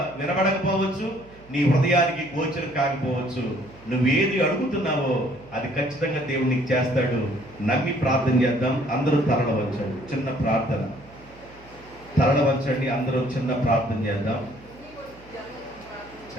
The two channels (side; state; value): right; noise; hum, 23 dB below the sound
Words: వినబడకపోవచ్చు, నీ హృదయానికి గోచరం కాకపోవచ్చు. నువ్వేది అడుగుతున్నావో అది ఖచ్చితంగా దేవుడు నీకు చేస్తాడు. నమ్మి ప్రార్థన చేద్దాం. అందరూ తరలవచ్చండి, చిన్న ప్రార్థన. తరలవచ్చండి, అందరూ చిన్న ప్రార్థన చేద్దాం.